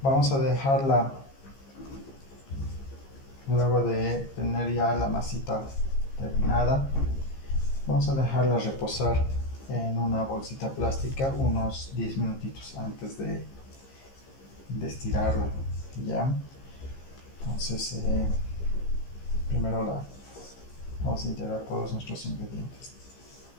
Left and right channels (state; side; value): late; right; 15 ms